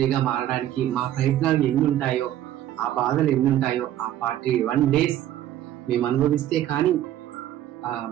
మారడానికి మా ప్రయత్నాలు ఎన్ని ఉంటాయో, ఆ బాధలు ఎన్ని ఉంటాయో, ఆ 41 days మేము అనుభవిస్తే కానీ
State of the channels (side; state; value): left; quieter; 12.5 dB